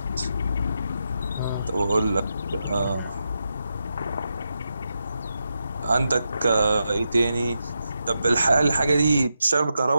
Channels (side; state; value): both; inverted; correlation -0.86